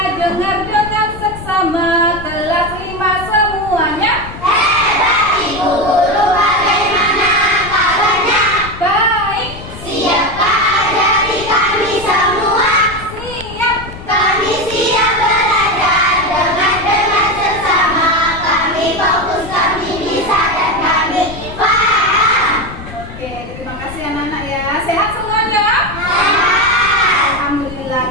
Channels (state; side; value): noise; left; rumble, 13 dB below the sound